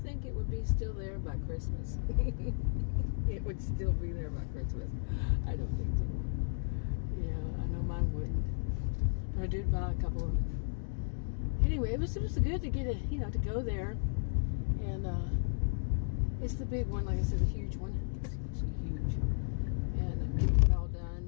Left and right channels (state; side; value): silent; right; digital silence